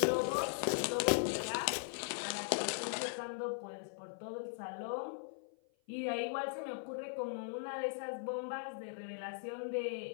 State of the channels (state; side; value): silent; right; 52 dB below the other